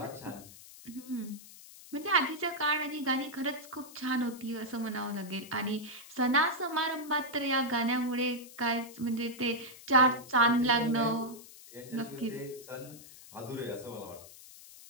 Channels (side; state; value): left; noise; hiss, 18 dB below the sound